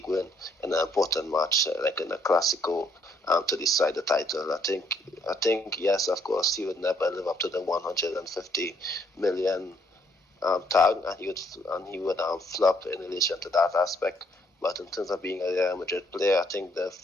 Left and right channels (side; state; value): both; normal; correlation 0.69